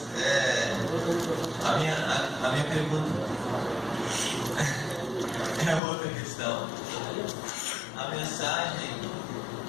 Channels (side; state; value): right; drops out; at 5.8 s